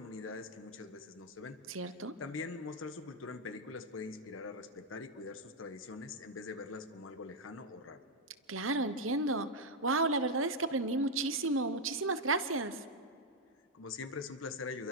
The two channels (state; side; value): normal; both; correlation 0.01